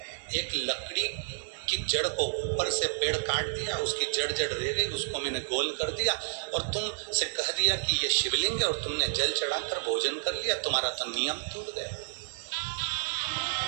एक लकड़ी की जड़ को ऊपर से पेड़ काट दिया, उसकी जड़ रह गई, उसको मैंने गोल कर दिया और तुम से कह दिया कि ये शिवलिंग है और तुमने जल चढ़ाकर भोजन कर लिया। तुम्हारा तो नियम टूट गया।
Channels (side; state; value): left; silent; digital silence